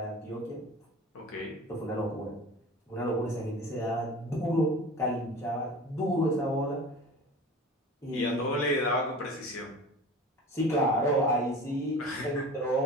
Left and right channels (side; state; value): both; normal; correlation 0.37